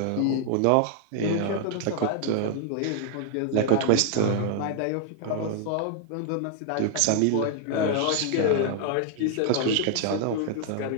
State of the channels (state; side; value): different; both; correlation 0.00